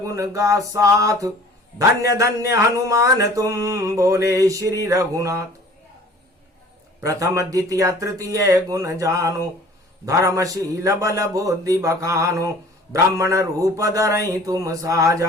गा साथ। धन्य धन्य हनुमान तुम, बोले श्री रघुनाथ। प्रथम द्वितीय तृतीय गुण जानो, धर्मशील बल बुद्धि बखानो। ब्राह्मण रूप धरई तुम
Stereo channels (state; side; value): normal; both; correlation 0.48